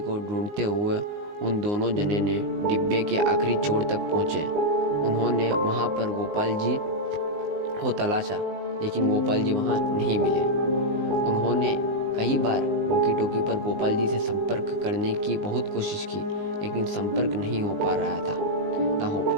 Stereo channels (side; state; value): left; late; 19 ms